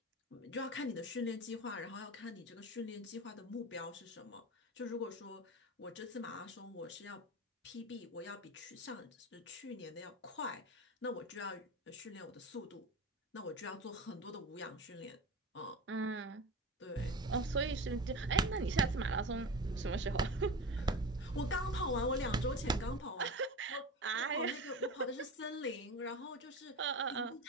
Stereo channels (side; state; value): both; normal; correlation 0.29